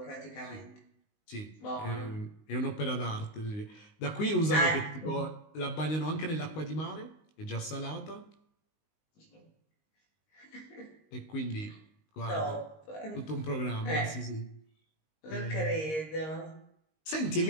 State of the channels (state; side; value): late; right; 19 ms